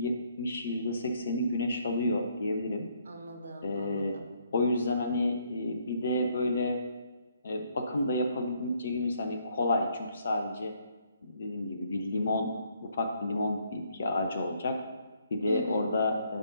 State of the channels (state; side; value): inverted; both; correlation -0.69